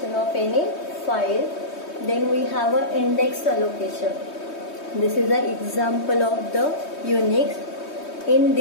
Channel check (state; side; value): late; right; 3.2 ms